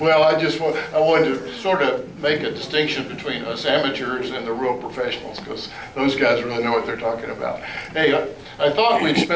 I wanted to sort of make a distinction between us amateurs and the real professionals, because those guys really know what they're talking about. Hey, I thought we'd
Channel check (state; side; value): identical; both; correlation 1.00